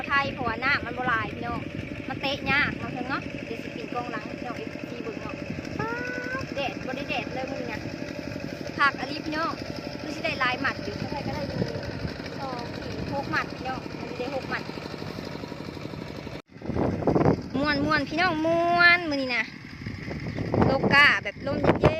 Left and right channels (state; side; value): identical; both; correlation 1.00